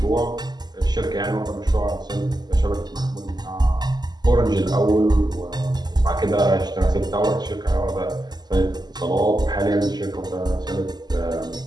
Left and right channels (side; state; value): left; late; 0.20 ms